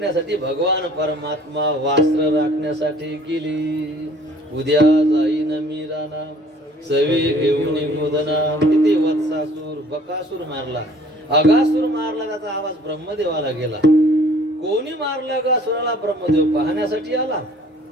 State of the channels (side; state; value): both; normal; correlation 0.54